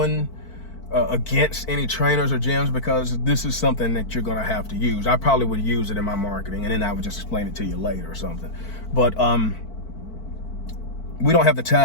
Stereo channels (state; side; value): late; right; 4.5 ms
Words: against any trainers or gyms, because this is something that you're gonna have to use. I probably would use it in my marketing, and then I would just explain it to you later or something. But we don't have the